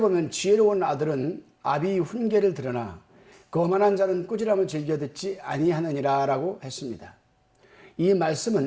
지혜로운 아들은 아비의 훈계를 들으나 거만한 자는 꾸지람을 즐겨 듣지 아니하느니라 라고 했습니다. 이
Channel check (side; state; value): both; identical; correlation 1.00